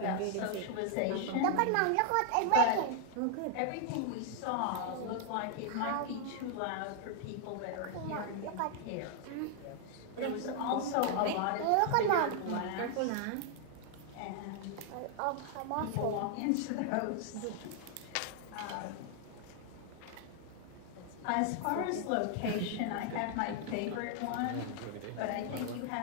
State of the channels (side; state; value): both; different; correlation 0.00